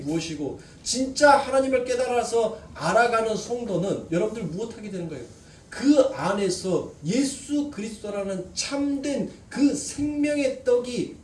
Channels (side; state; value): both; identical; correlation 1.00